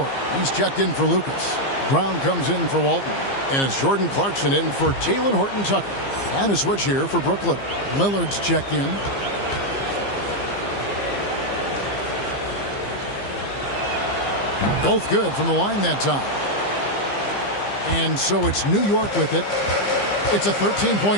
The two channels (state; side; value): late; right; 15 ms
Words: He's checked in for Lucas. Brown comes in for Walton. And it's Jordan Clarkson in for Talen Horton Tucker. And a switch here for Brooklyn. Lillard's checked in. Both good from the line that time. And so it's New York with it. It's a